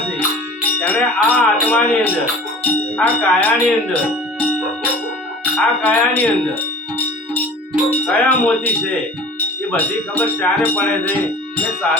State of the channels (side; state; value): both; normal; correlation 0.43